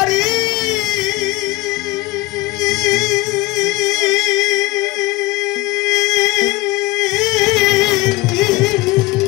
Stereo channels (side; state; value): right; quieter; 21.0 dB